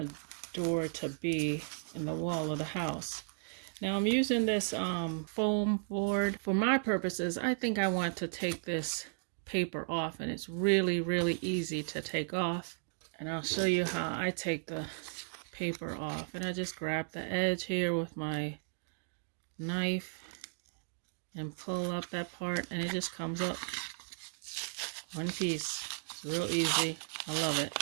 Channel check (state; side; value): silent; left; digital silence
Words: door to be in the wall of the house. Now I'm using this foam board. For my purposes, I think I want to take this paper off, and it's really easy to take off. And I'll show you how I take the paper off. And I just grab the edge here with my knife and pull up that part, and it just comes up one piece. It's real easy. I love it.